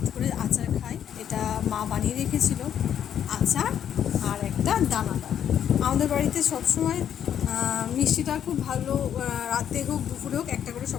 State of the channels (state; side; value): quieter; right; 9.4 dB